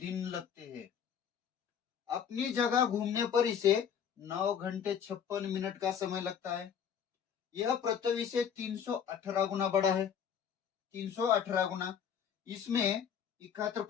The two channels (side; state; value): right; quieter; 8.0 dB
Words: लगते हैं। अपनी जगह घूमने पर इसे 9 घंटे 56 मिनट का समय लगता है। यह पृथ्वी से 318 गुना बड़ा है। 318 गुना। इसमें